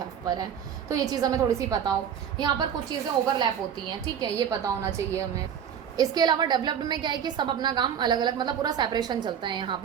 पर है। तो ये चीज़ हमें थोड़ी सी पता हो, यहाँ पर कुछ चीज़ें ओवरलैप होती हैं, ठीक है, ये पता होना चाहिए हमें। इसके अलावा डेवलप्ड में क्या है कि सब अपना काम अलग अलग, मतलब पूरा सेपरेशन चलता है यहाँ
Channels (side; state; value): left; quieter; 8.5 dB